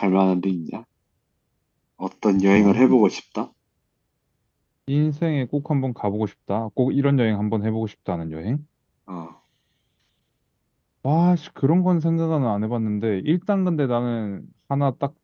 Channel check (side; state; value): both; identical; correlation 1.00